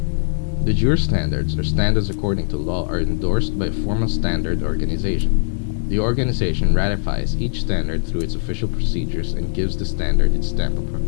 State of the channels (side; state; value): right; silent; digital silence